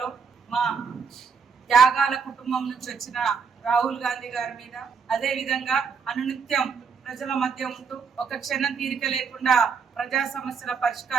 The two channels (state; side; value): quieter; left; 5.8 dB